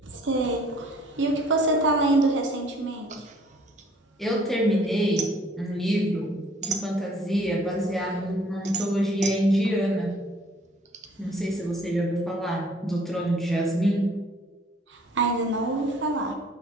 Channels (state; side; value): normal; both; correlation 0.57